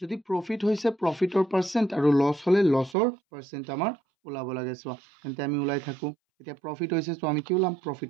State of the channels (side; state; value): left; drops out; at 3.0 s